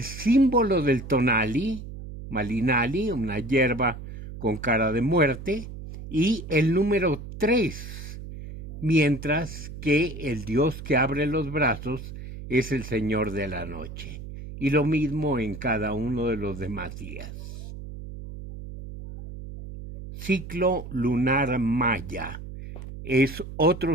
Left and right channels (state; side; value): noise; right; hum, 11 dB below the sound